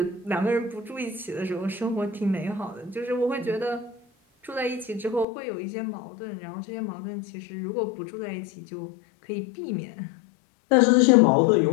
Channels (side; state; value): right; drops out; at 5.2 s